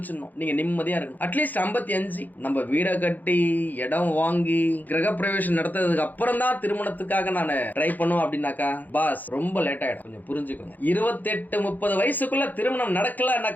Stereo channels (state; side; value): late; right; 0.084 ms